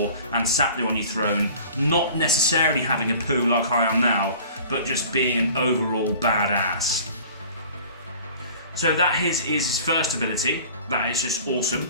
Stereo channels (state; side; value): inverted; both; correlation -0.46